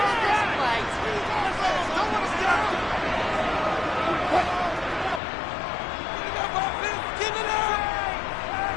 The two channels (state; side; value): drops out; right; at 5.2 s